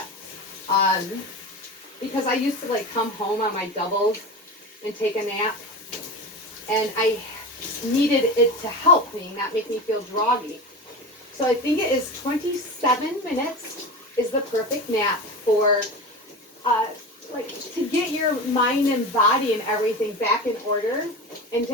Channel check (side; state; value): both; normal; correlation 0.27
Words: because I used to like come home on my doubles and take a nap, and I needed it to help me, not make me feel groggy. So I think it is 27 minutes is the perfect nap for like to get your mind and body and everything back in order and